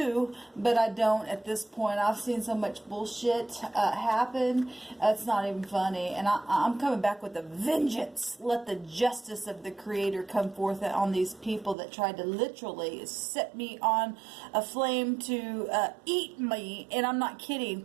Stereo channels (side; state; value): left; drops out; at 11.8 s